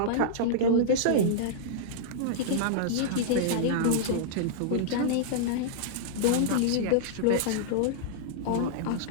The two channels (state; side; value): different; both; correlation -0.02